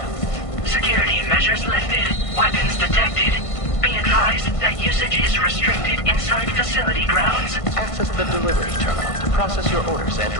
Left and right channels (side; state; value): right; late; 1.5 ms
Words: Security measures lifted. Weapons detected. Be advised that usage is restricted inside facility grounds. Access the delivery terminal to process your orders and